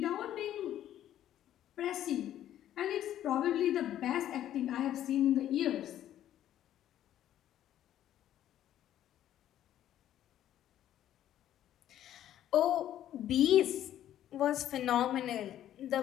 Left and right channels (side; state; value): right; quieter; 11.8 dB